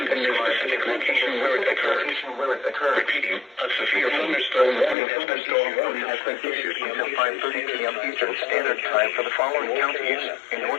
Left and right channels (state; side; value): drops out; right; at 5.0 s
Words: and the specific location where it occurred. occur. Repeating, a severe thunderstorm warning has been issued Until 5:30 p.m. Eastern Standard Time for the following counties in